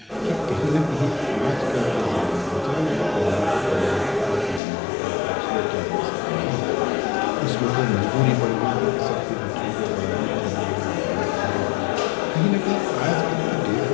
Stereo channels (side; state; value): right; drops out; at 4.6 s